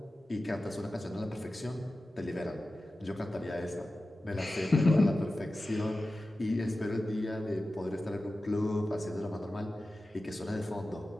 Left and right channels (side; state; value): both; normal; correlation 0.94